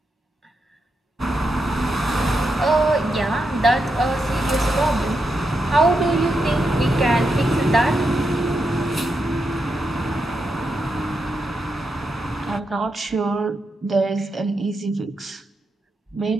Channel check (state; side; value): normal; both; correlation 0.85